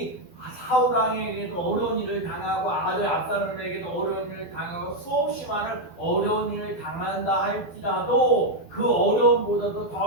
사울 왕에게도 어려운 일을 당하고 아들 압살롬에게도 어려운 일을 당하고 수없이 많은 어려운 일을 당한다 할지라도 그 어려움보다도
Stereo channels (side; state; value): right; late; 12 ms